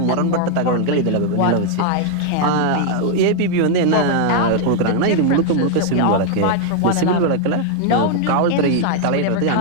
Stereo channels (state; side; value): different; both; correlation 0.00